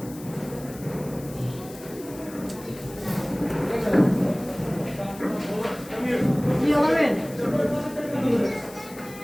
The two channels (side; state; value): left; noise; hiss, 18 dB below the sound